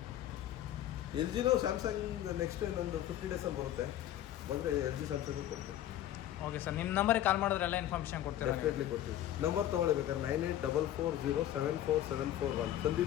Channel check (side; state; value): right; quieter; 12.4 dB